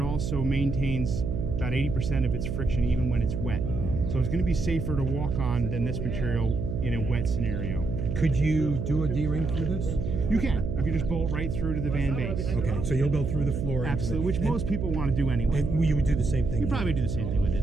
also maintains about 80% of its friction even when it's wet. So it's going to be safer to walk on than this material in a wet scenario. Could you do a D-ring through this? You can. You can just bolt right through to the van base. Okay, so you'll go through the floor. Absolutely, which most people want to do anyway. And you would do the same thing? You probably do the same thing with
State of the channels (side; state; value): right; noise; hum, 3 dB below the sound